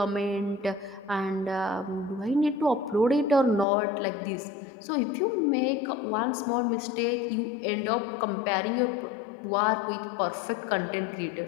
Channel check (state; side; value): drops out; right; at 3.7 s